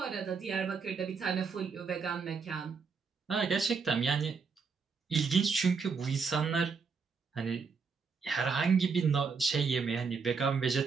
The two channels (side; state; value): left; quieter; 5.3 dB